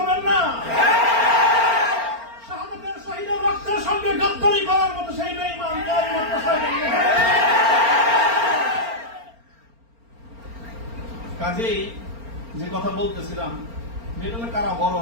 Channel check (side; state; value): left; late; 4.4 ms